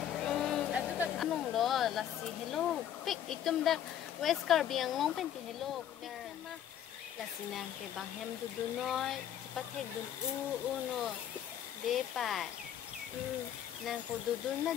atu ta nong lo la si hello pik itum da weskar biang long pen ti hello pik ma la si nang ke bang hem du noy cepat hek dun no de pai nang ko dudun na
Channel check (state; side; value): quieter; right; 10.2 dB